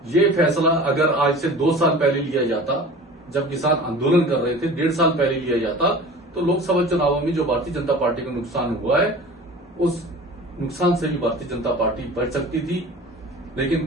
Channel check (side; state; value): both; normal; correlation 0.40